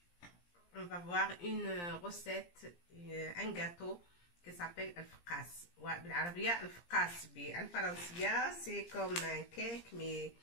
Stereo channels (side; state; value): right; late; 17 ms